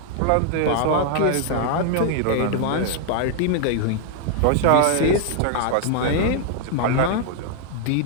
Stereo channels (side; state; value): both; different; correlation 0.00